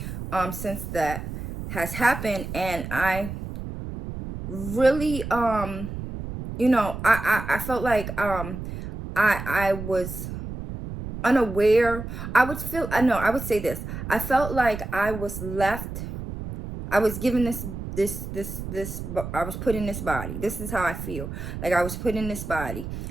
since that has happened, and I really I felt like I was unaware. I would say this. I felt like I was left. I was given I was put in this body. This is how I feel. Like I was put in this body.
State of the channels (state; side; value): noise; right; rumble, 8 dB below the sound